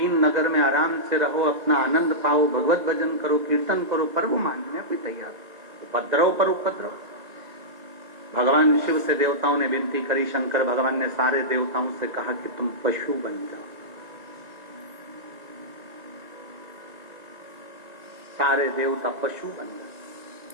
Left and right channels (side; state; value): left; late; 1.9 ms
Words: नगर में आराम से रहो, अपना आनंद पाओ, भगवत भजन करो, कीर्तन करो, पर वो मानने कोई तैयार। उपद्रव पर उपद्रव। भगवान शिव से देवताओं ने विनती करी, शंकर भगवान ने सारे देवताओं से कहा कि तुम पशु बन जाओ। सारे देवता पशु बन गए।